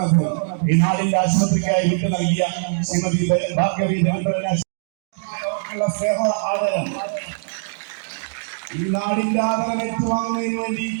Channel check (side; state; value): left; silent; digital silence